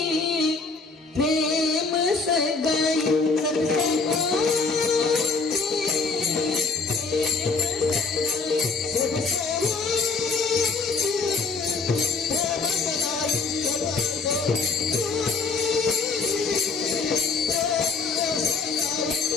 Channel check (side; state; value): right; quieter; 4.1 dB